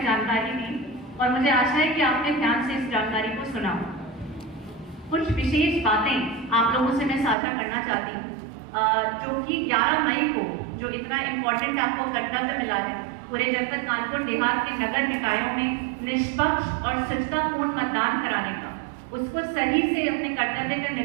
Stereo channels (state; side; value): drops out; left; at 7.4 s